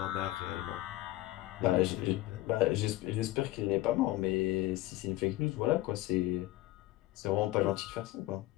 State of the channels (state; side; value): quieter; right; 17.4 dB